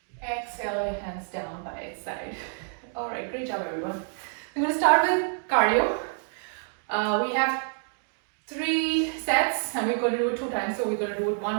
Exhale. exhale, your hands down by its side. All right, great job, everyone. I'm going to start with cardio. We have 3 sets and we're going to do it 2 times, so we're going to do it 1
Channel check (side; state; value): left; silent; 55 dB below the other